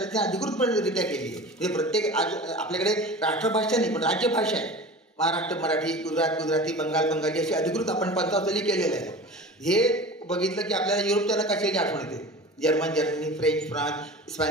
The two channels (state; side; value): normal; both; correlation 0.36